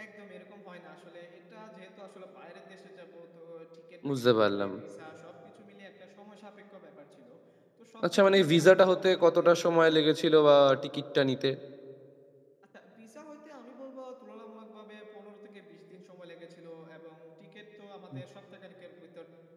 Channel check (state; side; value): identical; both; correlation 1.00